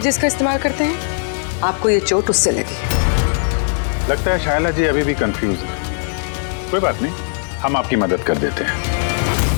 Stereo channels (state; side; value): silent; right; digital silence